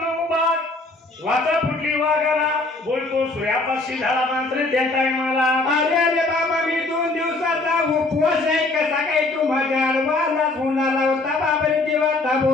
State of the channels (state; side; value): quieter; right; 3.2 dB